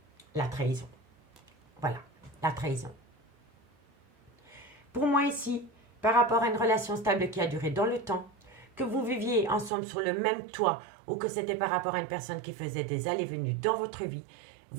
La trahison. Voilà, la trahison. Pour moi ici, par rapport à une relation stable qui a duré dans le temps, que vous viviez ensemble sur le même toit ou que c'était par rapport à une personne qui faisait des allées-venues dans votre vie,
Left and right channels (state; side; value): drops out; left; at 9.7 s